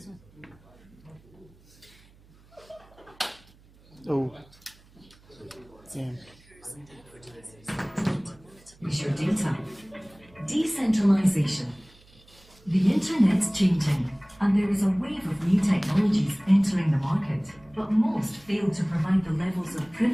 Oh. Yeah. Is your data. Decentralization. The internet's changing, and there is a wave of new technologies entering the market, but most fail to provide the levels of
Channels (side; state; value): right; noise; hum, 28 dB below the sound